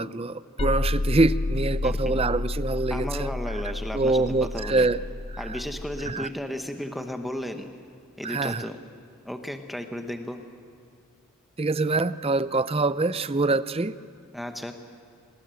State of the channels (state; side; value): normal; both; correlation 0.57